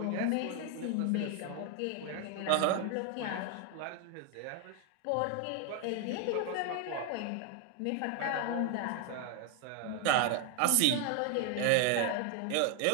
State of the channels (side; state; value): both; different; correlation 0.00